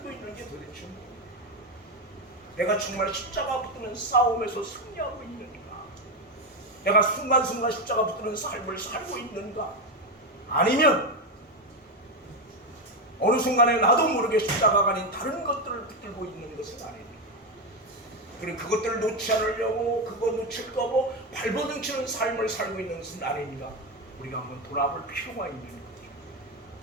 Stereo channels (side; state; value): both; normal; correlation 0.11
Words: 있는 게 도대체 뭐야? 내가 정말 십자가 붙드는 싸움에서 승리하고 있는가? 내가 순간순간 십자가 붙드는 삶을 살고 있는가? 아니면 어느 순간에 나도 모르게 십자가가 아닌 다른 것들을 붙들고 있는 것은 아닙니다. 그리고 그것들을 놓지 않으려고 그거 놓칠까 봐 발버둥치는 삶을 살고 있는 것은 아닙니다. 우리가 한번 돌아볼 필요가 있는 거죠.